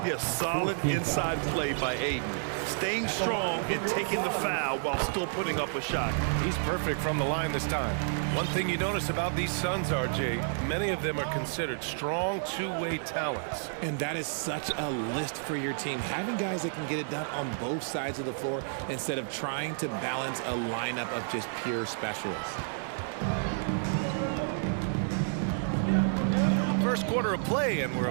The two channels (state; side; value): silent; left; digital silence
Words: Yeah, solid inside play by Aiden. Staying strong and taking the foul while still putting up a shot. He's perfect from the line this time. One thing you notice about these Suns, RJ, many of them are considered strong two-way talents. And that is such a list for your team. Having guys that can get it done on both sides of the floor instead of trying to balance a lineup of just pure specialists. First quarter of play, and we're